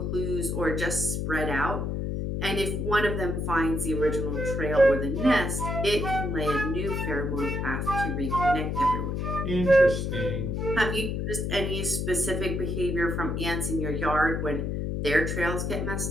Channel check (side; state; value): left; noise; hum, 1 dB below the sound